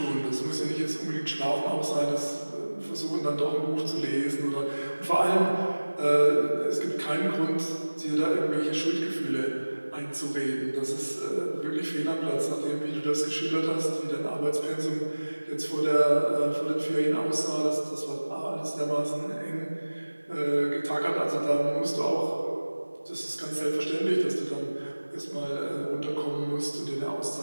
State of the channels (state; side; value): inverted; both; correlation -1.00